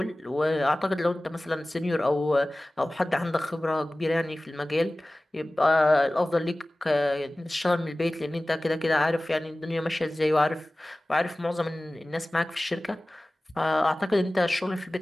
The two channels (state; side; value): normal; both; correlation 0.98